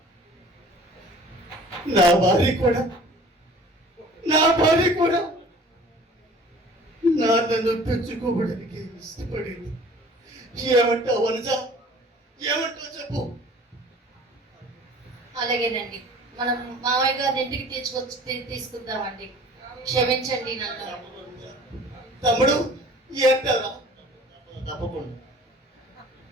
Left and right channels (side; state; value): both; normal; correlation 0.48